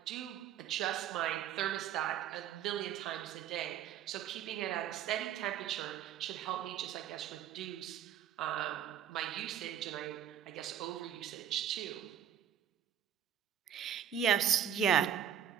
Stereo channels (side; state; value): left; quieter; 9.7 dB